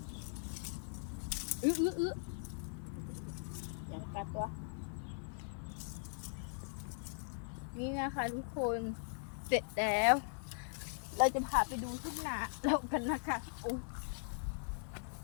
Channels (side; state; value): right; silent; digital silence